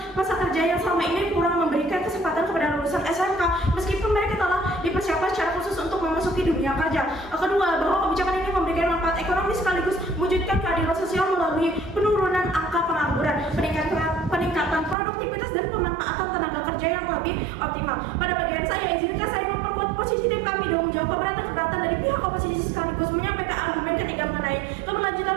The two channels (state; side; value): drops out; left; at 15.0 s